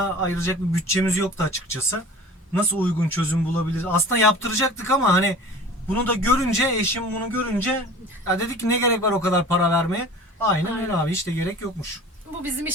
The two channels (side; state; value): both; normal; correlation 0.41